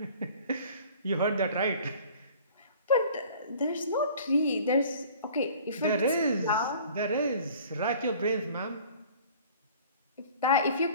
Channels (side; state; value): both; inverted; correlation -0.49